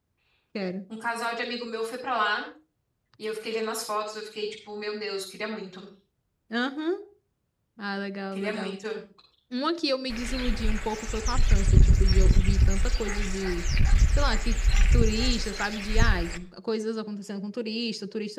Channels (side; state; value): both; identical; correlation 1.00